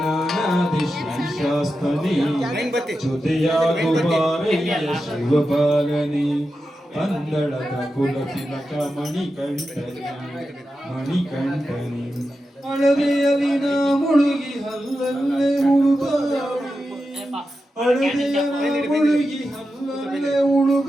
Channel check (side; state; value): both; normal; correlation 0.90